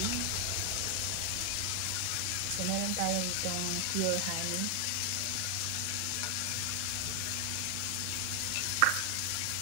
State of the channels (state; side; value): different; both; correlation 0.00